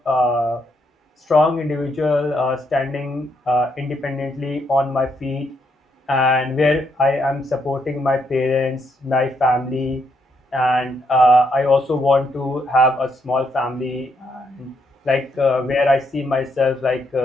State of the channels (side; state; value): both; normal; correlation 0.76